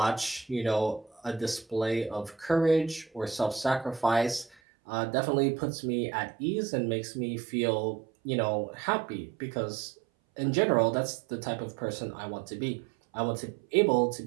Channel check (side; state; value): left; drops out; at 4.5 s